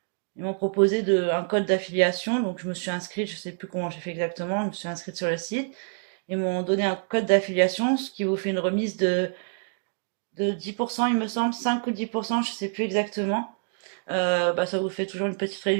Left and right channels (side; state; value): left; silent; 60 dB below the other